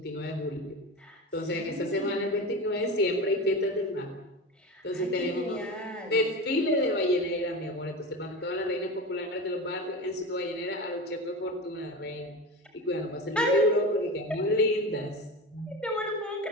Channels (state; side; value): normal; both; correlation 0.26